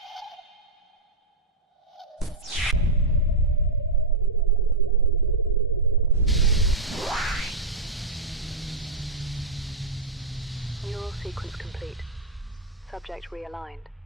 Neural sequence complete. Subject realigned.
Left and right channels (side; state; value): left; quieter; 3.4 dB